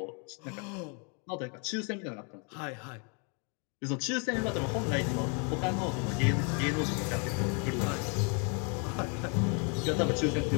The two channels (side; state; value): right; quieter; 36.4 dB